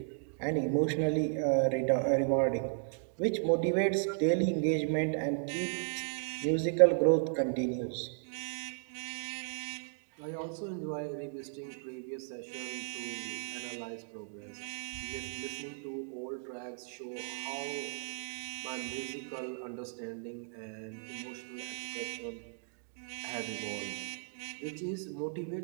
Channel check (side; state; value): left; silent; digital silence